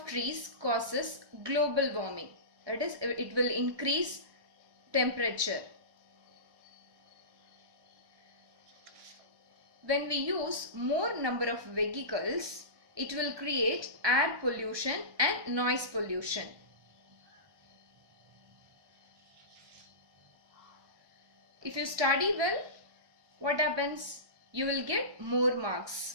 trees causes global warming. That is, it will increase temperature. When we use more number of vehicles, it will create air pollution and noise pollution. If you study well, what happens? You will get more marks.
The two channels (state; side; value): late; left; 1.2 ms